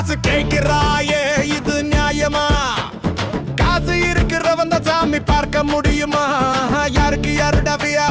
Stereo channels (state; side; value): identical; both; correlation 1.00